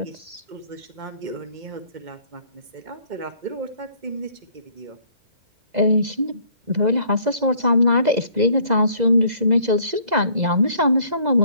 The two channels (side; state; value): left; late; 2.0 ms